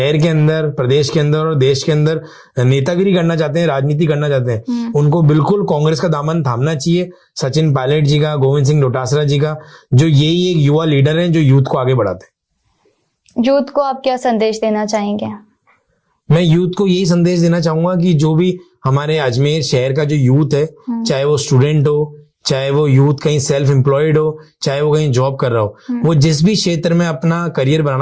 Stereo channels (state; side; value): identical; both; correlation 1.00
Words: के अंदर, प्रदेश के अंदर और देश के अंदर नेतागिरी करना चाहते हैं, राजनीति करना चाहते हैं, उनको बिल्कुल कांग्रेस का दामन थामना चाहिए। सचिन पायलट जी का, गोविंद सिंह डोटासरा जी का, जो यही एक युवा लीडर हैं जो यूथ को आगे बढ़ाते हैं। यूथ को आप क्या संदेश देना चाहेंगे? मैं यूथ को यही संदेश देना चाहूंगा कि जो भी हमारे अजमेर शहर का जो यूथ है, चाहे वो स्टूडेंट हो, चाहे वो यूथ कहीं सेल्फ एम्प्लॉयड हो, चाहे वो कहीं जॉब कर रहा हो, वो जिस भी क्षेत्र में अपना करियर